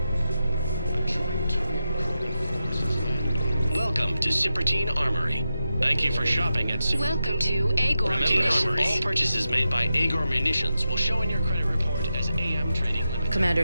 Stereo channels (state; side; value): inverted; both; correlation -0.90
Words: Welcome to Cipertine Armory. Thank you for shopping at Welcome to Agor Munitions. All purchases made by Agor Munitions will show in your credit report as AM Trading Limited.